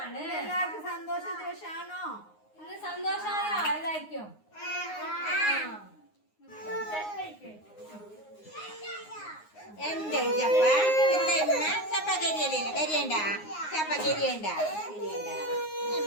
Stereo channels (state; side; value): late; right; 9.6 ms